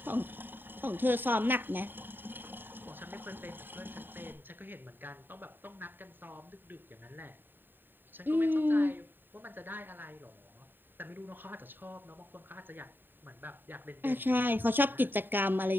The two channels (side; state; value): left; late; 0.094 ms